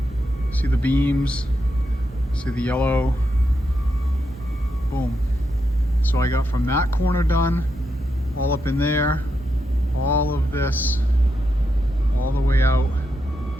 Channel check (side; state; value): both; normal; correlation 0.84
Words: See the beams, see the yellow, boom. So I got from that corner done, all up in there, all of this, all the way out